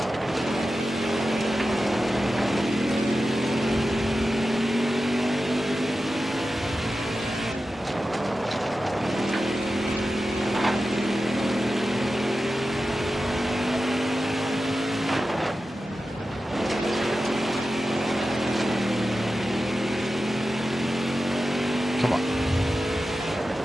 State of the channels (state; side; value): normal; both; correlation 0.93